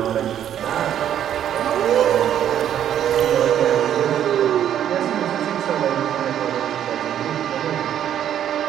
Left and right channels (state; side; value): quieter; left; 10.2 dB